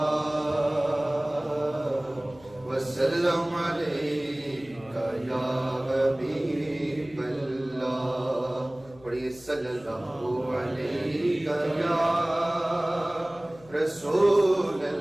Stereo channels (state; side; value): noise; left; hum, 24 dB below the sound